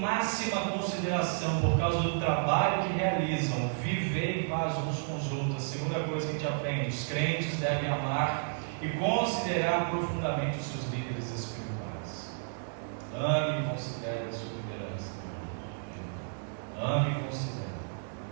consideração por causa do trabalho que realizam, viver em paz uns com os outros. A segunda coisa que a gente aprende, os crentes devem amar e considerar profundamente os seus líderes espirituais. Ame e considere a sua liderança. Ame e considere.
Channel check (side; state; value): left; silent; digital silence